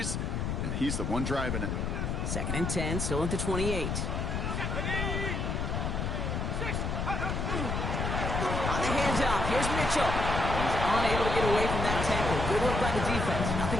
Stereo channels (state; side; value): noise; left; rumble, 1 dB below the sound